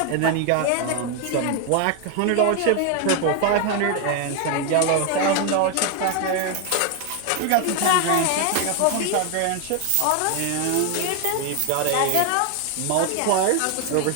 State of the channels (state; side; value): different; both; correlation 0.01